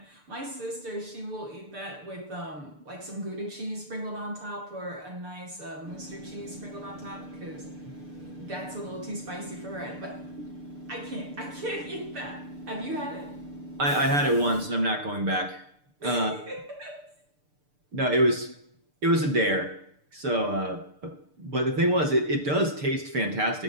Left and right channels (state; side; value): late; left; 6.8 ms